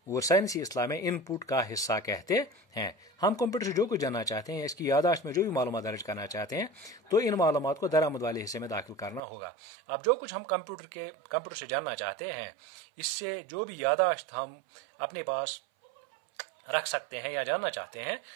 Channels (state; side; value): drops out; left; at 9.2 s